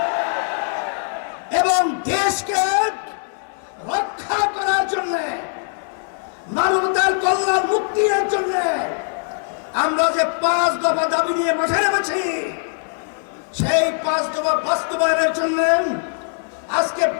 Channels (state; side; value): silent; right; digital silence